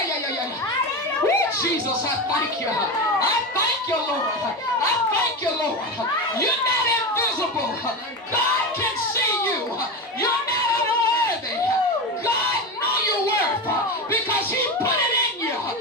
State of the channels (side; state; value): both; normal; correlation 0.20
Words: Woo, Jesus, I thank you. I thank thank you, Lord. I thank you, Lord. You're not invisible. God can see you. You're not unworthy. God knows your worth because he put it in you.